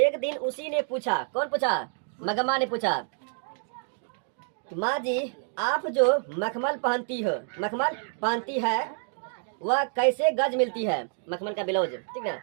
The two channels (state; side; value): silent; left; 59 dB below the other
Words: दिन उसी ने पूछा, कौन पूछा? मगम्मा ने पूछा, माँ जी आप जो मखमल पहनती है वह कैसे गज मिलती है? मखमल का ब्लाउज, ठीक ना।